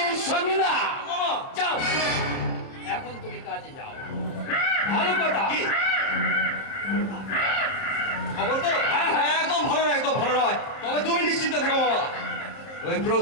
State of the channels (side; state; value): right; late; 30 ms